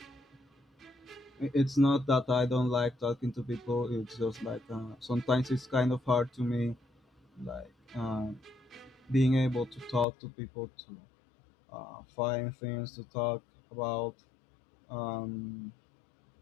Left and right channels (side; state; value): right; drops out; at 10.1 s